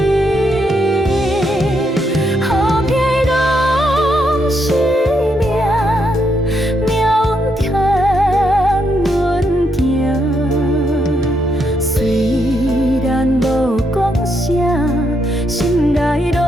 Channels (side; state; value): both; normal; correlation 0.78